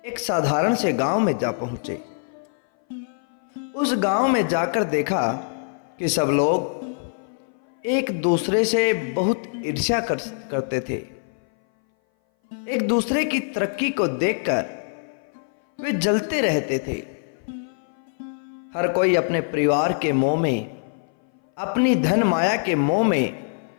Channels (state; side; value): silent; right; 59 dB below the other